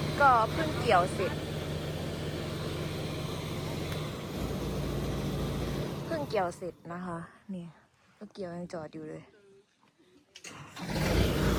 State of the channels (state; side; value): identical; both; correlation 1.00